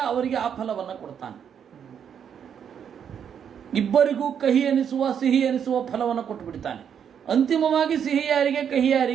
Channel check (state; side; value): quieter; left; 8.1 dB